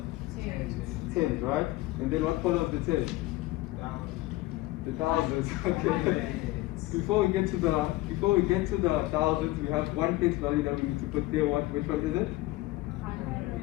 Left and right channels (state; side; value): quieter; right; 18.8 dB